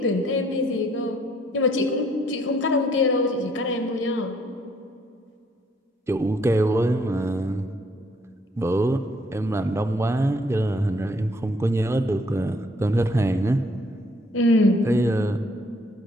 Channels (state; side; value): normal; both; correlation 0.66